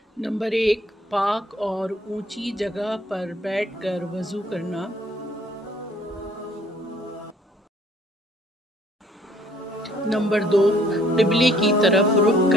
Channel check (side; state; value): both; normal; correlation 0.60